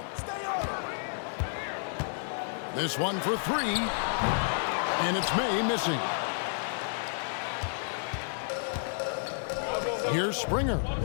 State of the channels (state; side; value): silent; right; digital silence